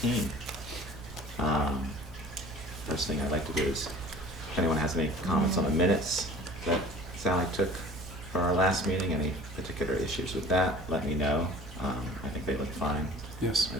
First thing I'd like to do is, if anyone has any comments on the minutes that Sally took for our last meeting, any particular issues with that, let me know. I think they look fine. Yes.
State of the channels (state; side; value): normal; both; correlation 0.45